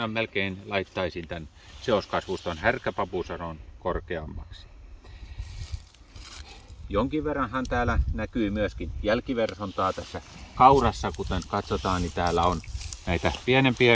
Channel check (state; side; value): identical; both; correlation 1.00